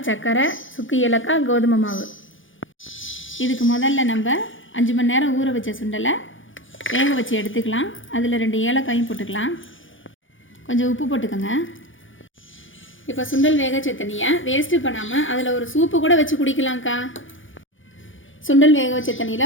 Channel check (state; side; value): late; right; 0.57 ms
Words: சர்க்கரை, சுக்கு ஏலக்காய், கோதுமை மாவு. இதுக்கு முதல்ல நம்ம 5 மணி நேரம் ஊற வச்ச சுண்டலை வேக வச்சு எடுத்துக்கலாம். அதில் 2 ஏலக்காயும் போட்டுக்கலாம். கொஞ்சம் உப்பு போட்டுக்கோங்க. இப்போ சுண்டல் வேக வச்ச தண்ணியை வேஸ்ட்டு பண்ணாமல் அதில் ஒரு சூப்பு கூட வச்சு குடிக்கலாம்க்கா. சுண்டல் வேக வச்ச